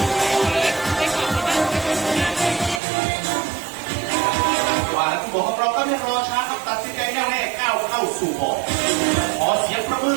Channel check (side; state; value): left; drops out; at 2.8 s